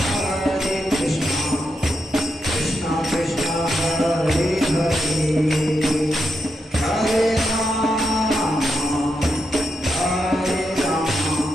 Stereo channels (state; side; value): normal; both; correlation 0.84